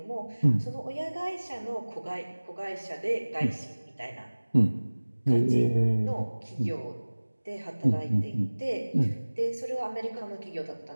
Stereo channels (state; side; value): inverted; both; correlation -1.00